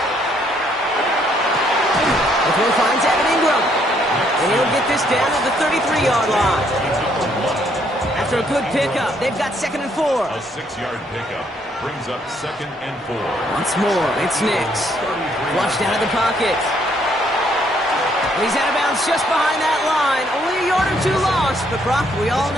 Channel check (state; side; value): normal; both; correlation 0.69